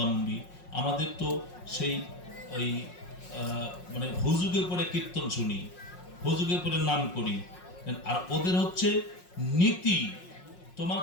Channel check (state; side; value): late; right; 5.5 ms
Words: আমাদের তো সেই ওই মানে হুজুগে পরে কীর্তন শুনি, হুজুগে পরে নাম করি। আর ওদের হচ্ছে নীতি,